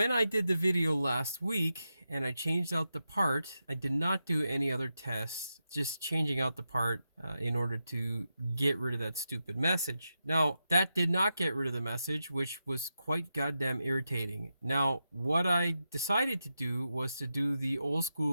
I did the video last week and I changed out the part, I did not do any other tests, just changing out the part in order to get rid of that stupid message. Now, that did not get rid of the message, which was quite goddamn irritating. Now, what I decided to do was to do the old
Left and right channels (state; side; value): inverted; both; correlation -0.88